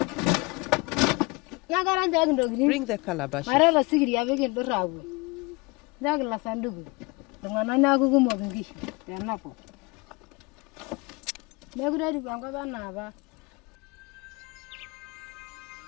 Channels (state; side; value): quieter; right; 26.1 dB